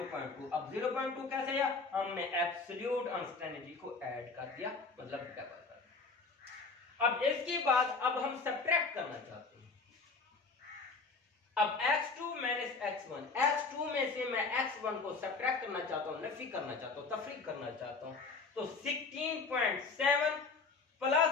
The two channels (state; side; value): quieter; right; 4.3 dB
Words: अब 0.2 कैसे आया, हमने एब्सोल्यूट अनसर्टेनिटी को ऐड कर दिया, मतलब डबल कर दिया। अब इसके बाद अब हम सब्ट्रैक्ट करना चाहते हैं। अब x2 माइनस x1, x2 में से मैं x1 को सब्ट्रैक्ट करना चाहता हूं, नफी करना चाहता हूं, तफरीक करना चाहता हूं, तो 16.7